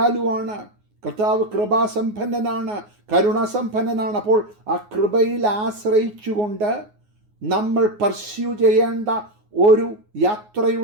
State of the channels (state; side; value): late; left; 9.5 ms